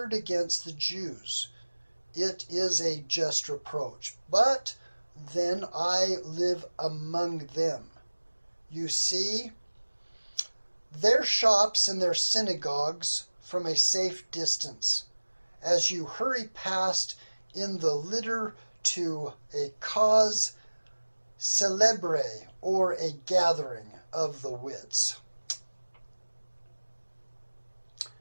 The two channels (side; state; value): both; inverted; correlation -1.00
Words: against the Jews. It is a just reproach, but then I live among them. You see, their shops and their synagogues from a safe distance, as you hurry past in the litter to a cause celebre, or a gathering of the wits.